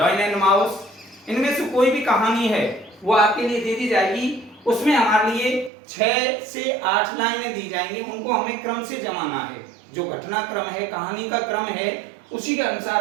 एंड माउस। इनमें से कोई भी कहानी है वो आपके लिए दे दी जाएगी। उसमें हमारे लिए 6 से 8 लाइनें दी जाएंगी, उनको हमें क्रम से जमाना है। जो घटना क्रम है, कहानी का क्रम है, उसी के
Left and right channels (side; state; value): left; drops out; at 5.7 s